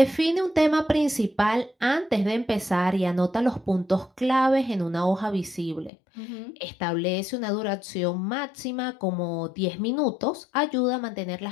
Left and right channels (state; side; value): drops out; right; at 5.9 s